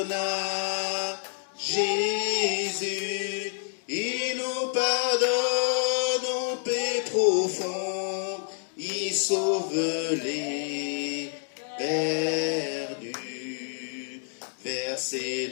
Jésus. Il nous pardonne nos paix profondes. Il sauve les perdus. Verser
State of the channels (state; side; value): silent; right; digital silence